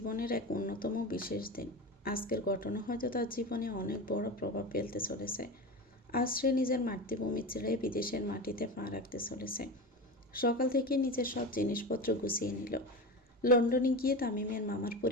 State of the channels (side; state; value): both; normal; correlation 0.25